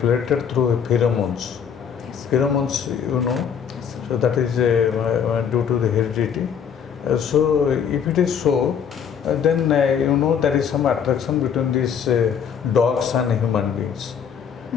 related through pheromones. Yes. Pheromones, you know. Yes, sir. So that is due to the heredity. So if it is so, then you know there is some attraction between these dogs and human beings.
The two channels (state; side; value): quieter; right; 7.6 dB